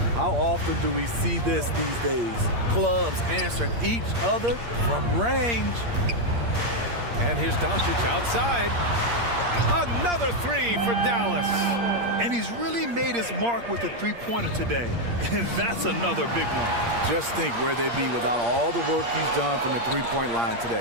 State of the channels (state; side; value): late; left; 8.6 ms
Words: How often do we see this these days? Clubs answering each other from range. And here's Doncic outside. Another three for Dallas. And he's really made his mark with the three-pointer today. And that's another big one. Just think where they'd be without all the work he's done from the three-point line